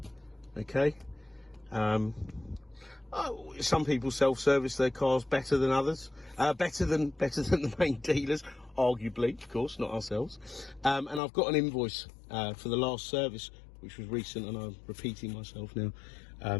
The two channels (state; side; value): drops out; right; at 11.2 s